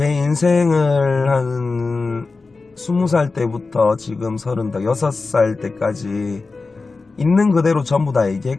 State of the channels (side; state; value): right; quieter; 3.9 dB